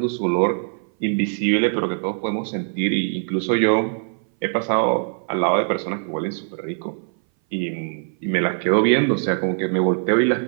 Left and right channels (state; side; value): silent; left; 59 dB below the other